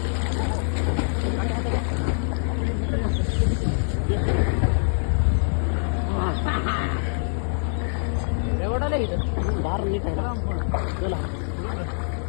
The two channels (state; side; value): silent; right; 62 dB below the other